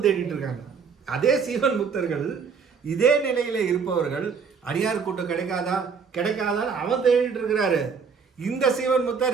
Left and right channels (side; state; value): left; quieter; 5.8 dB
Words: தேடிட்டு இருக்காங்க. அதே சீவன் முத்தர்கள் இதே நிலையில இருப்பவர்கள் அடியார் கூட்டம் கிடைக்காதா கிடைக்காதான்னு அவன் தேடிட்டு இருக்கிறாரு. இந்த சீவன்